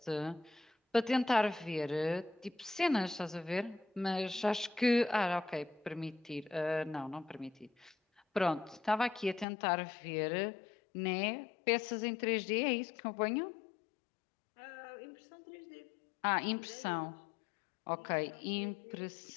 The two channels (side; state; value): right; drops out; at 9.5 s